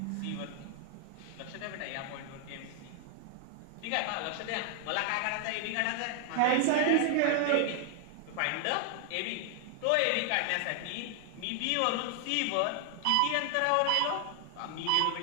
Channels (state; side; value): different; both; correlation 0.00